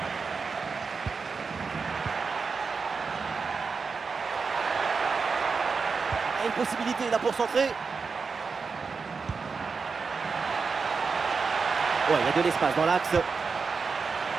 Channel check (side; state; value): left; quieter; 5.0 dB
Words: Ah, une possibilité là pour centrer. Ouais, il y a de l'espace dans l'axe.